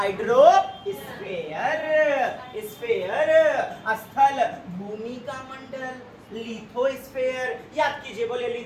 स्फेयर, स्थल भूमि का मंडल, लिथोस्फेयर, याद कीजिए, बोले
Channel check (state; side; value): identical; both; correlation 1.00